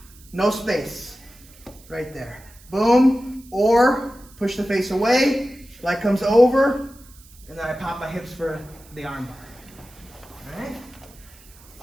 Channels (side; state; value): right; noise; hiss, 24 dB below the sound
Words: No space. Right there. Boom. Or push the face away, leg comes over, and then I pop my hips for the arm bar. All right?